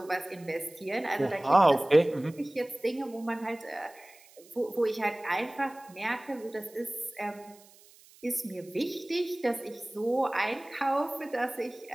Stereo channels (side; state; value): right; noise; hiss, 25 dB below the sound